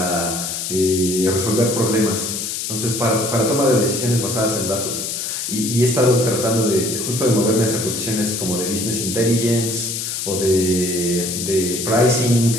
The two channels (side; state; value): left; noise; hiss, 4 dB below the sound